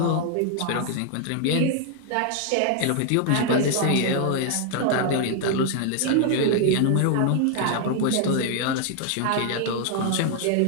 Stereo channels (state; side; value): different; both; correlation 0.00